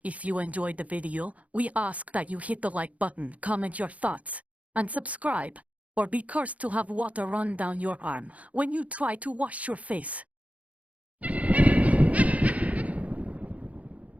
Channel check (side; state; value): left; late; 0.068 ms